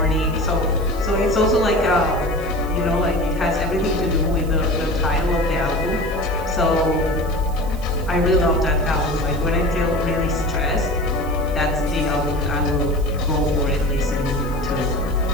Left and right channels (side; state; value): right; noise; hiss, 21 dB below the sound